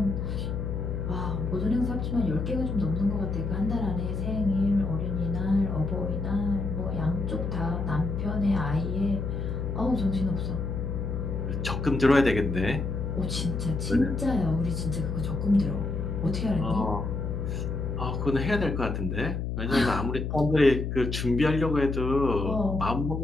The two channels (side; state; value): left; noise; hum, 3 dB below the sound